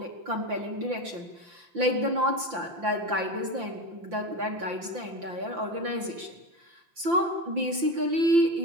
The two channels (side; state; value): left; late; 5.8 ms